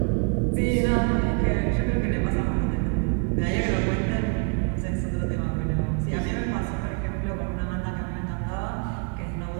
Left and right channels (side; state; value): left; quieter; 37.0 dB